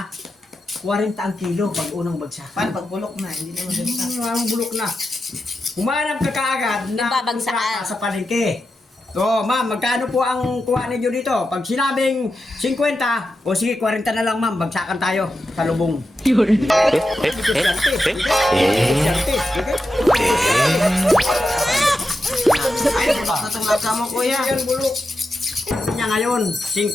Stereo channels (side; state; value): both; normal; correlation 0.89